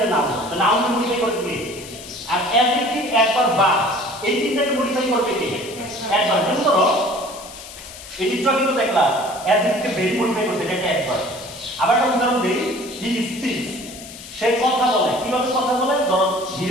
নাউন, তো নাউন মডিফাই করবে কি? আর অ্যাডজেক্টিভ, অ্যাডভার্ব, বা এই তিনটাকে মডিফাই করবে কি? অ্যাডভার্ব। যেমন ধরো এই চিত্র কিন্তু দেখলাম অ্যাডজেক্টিভকে ভেরি মডিফাই করছে, এটা একটা অ্যাডভার্ব। আবার একটা উদাহরণ দেই, হি স্পিক্স, সে কথা বলে। কিভাবে কথা বলে? ধরো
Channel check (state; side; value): noise; left; hiss, 15 dB below the sound